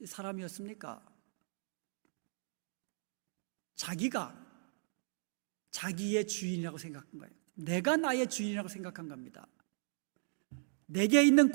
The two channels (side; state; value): left; silent; digital silence